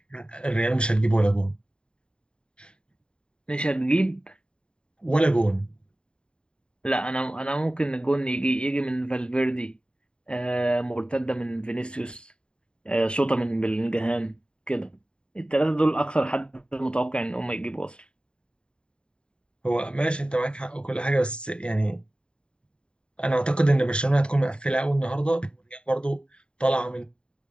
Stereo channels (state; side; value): late; right; 0.052 ms